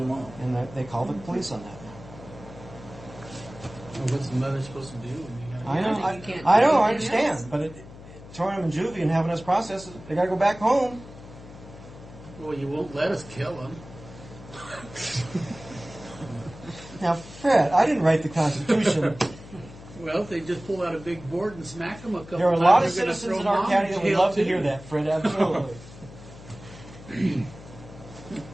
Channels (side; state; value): left; noise; hum, 17 dB below the sound